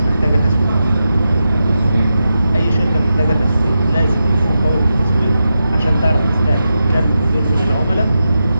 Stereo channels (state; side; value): inverted; both; correlation -0.89